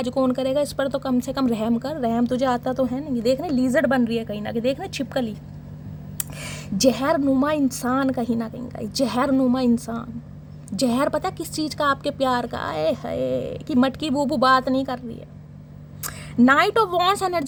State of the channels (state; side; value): identical; both; correlation 1.00